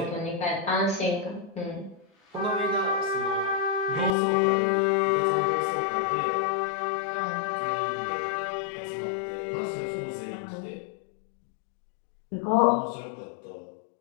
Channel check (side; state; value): right; drops out; at 4.2 s